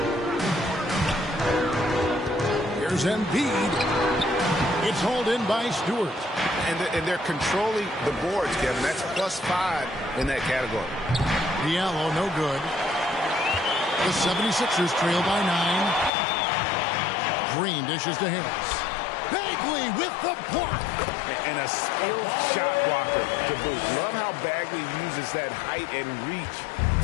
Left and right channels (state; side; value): drops out; right; at 16.1 s